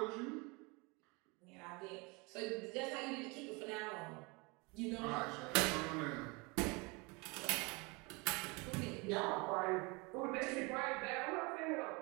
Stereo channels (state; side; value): quieter; left; 27.8 dB